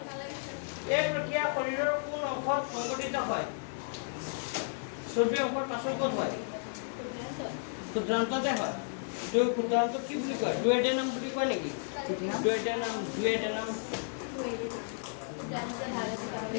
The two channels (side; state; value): right; silent; digital silence